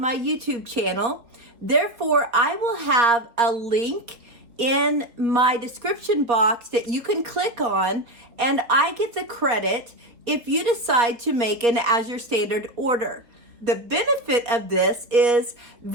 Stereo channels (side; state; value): left; late; 4.2 ms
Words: YouTube channel. Therefore, I will have a link in my description box that you can click on, and I get the credit if you decide to make an Azure Standard order. The benefit of this is